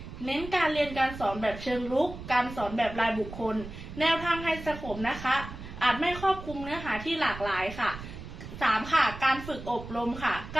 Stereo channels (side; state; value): right; noise; rumble, 12 dB below the sound